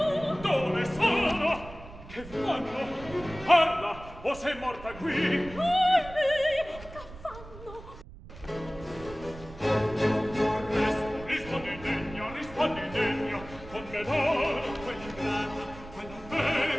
Dove sono? Che fanno? Parla, o sei morta qui? Che fanno? Rispondi degno, con me d'oro, quell'ingrata, quella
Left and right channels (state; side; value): noise; right; rumble, 16 dB below the sound